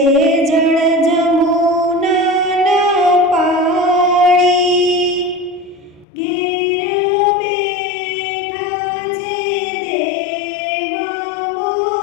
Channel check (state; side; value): drops out; right; at 6.1 s